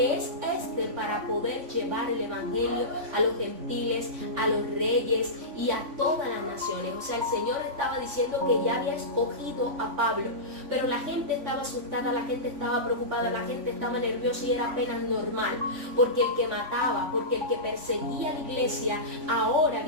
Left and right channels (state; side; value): late; left; 3.5 ms